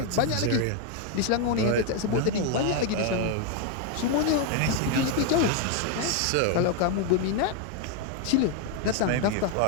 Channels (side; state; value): both; different; correlation 0.01